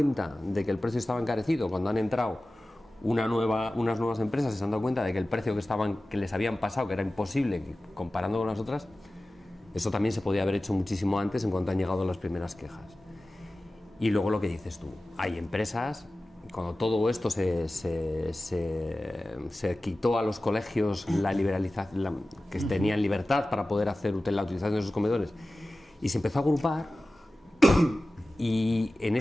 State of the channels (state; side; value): normal; both; correlation 0.96